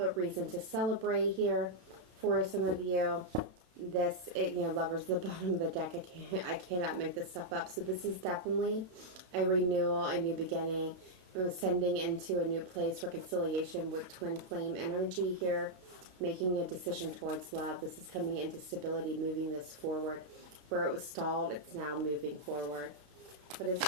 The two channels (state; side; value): late; left; 32 ms